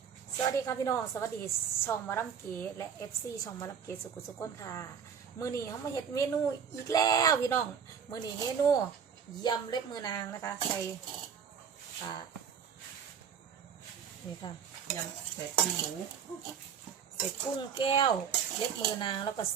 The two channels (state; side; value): quieter; left; 7.3 dB